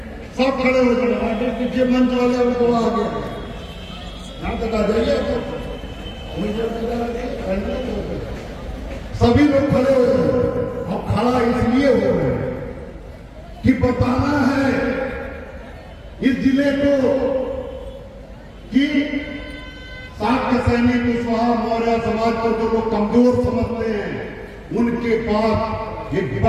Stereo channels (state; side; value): identical; both; correlation 1.00